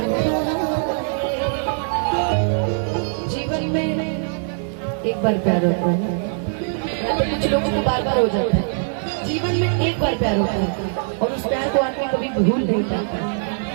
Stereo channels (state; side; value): silent; left; digital silence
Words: जीवन में एक बार प्यार होता है या तो कुछ लोगों को बार बार हो जाता है। जीवन में एक बार प्यार होता है और उस प्यार को आदमी कभी भूल नहीं पाता।